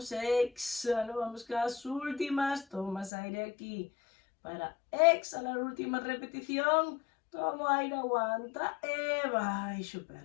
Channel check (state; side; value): drops out; right; at 3.1 s